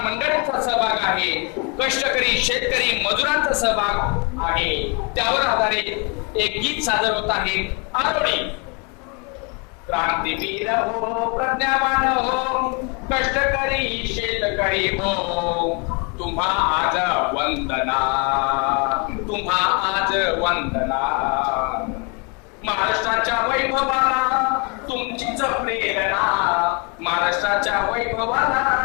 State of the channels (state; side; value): quieter; right; 33.5 dB